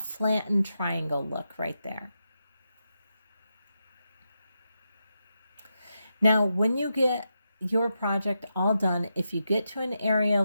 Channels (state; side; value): inverted; both; correlation -0.86